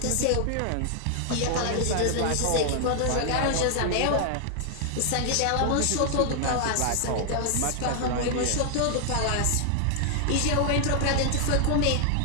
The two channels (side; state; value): both; different; correlation 0.00